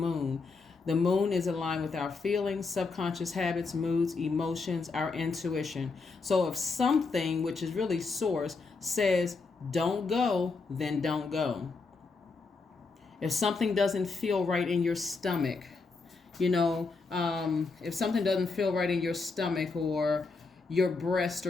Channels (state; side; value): quieter; right; 4.2 dB